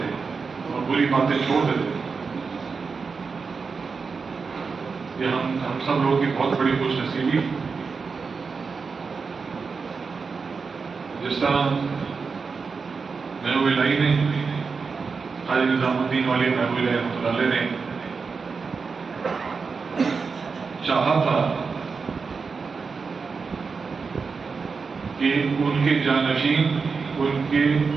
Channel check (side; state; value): left; quieter; 5.0 dB